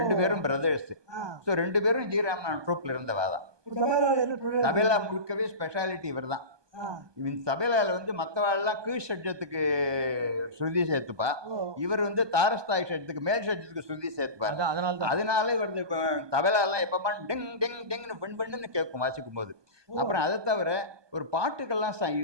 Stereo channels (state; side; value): late; left; 1.2 ms